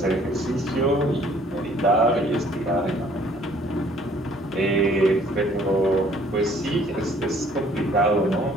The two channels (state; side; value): normal; both; correlation 0.58